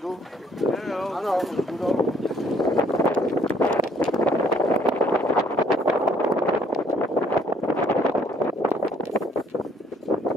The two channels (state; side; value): normal; both; correlation 0.63